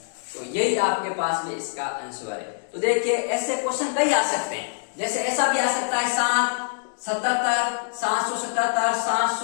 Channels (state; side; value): silent; right; digital silence